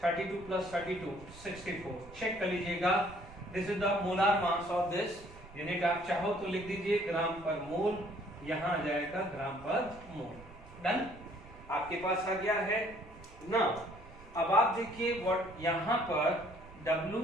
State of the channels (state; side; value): noise; right; rumble, 20 dB below the sound